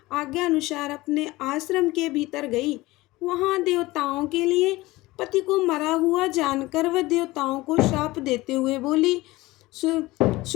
आज्ञा अनुसार अपने आश्रम के भीतर गई। वहां देवताओं के लिए पति को मरा हुआ जानकर वह देवताओं को शाप देते हुए बोली।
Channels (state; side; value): quieter; right; 19.7 dB